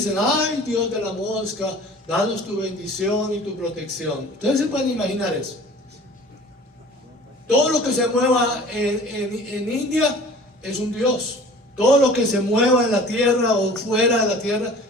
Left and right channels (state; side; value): normal; both; correlation 0.45